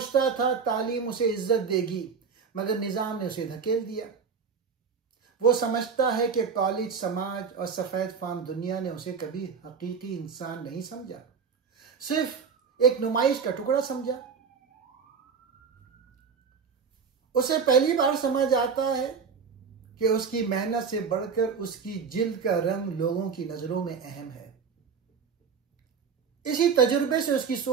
था तालीम उसे इज्जत देगी मगर निजाम ने उसे धकेल दिया। वो समझता है कि कॉलेज, समाज और सफेद फाम दुनिया ने उसे कभी हकीकी इंसान नहीं समझा, सिर्फ एक नुमाइश का टुकड़ा समझा। उसे पहली बार समझ आता है कि उसकी मेहनत से बढ़कर उसकी जिल्द का रंग लोगों की नजरों में अहम है। इसी तजुर्बे से उसकी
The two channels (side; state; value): left; quieter; 5.9 dB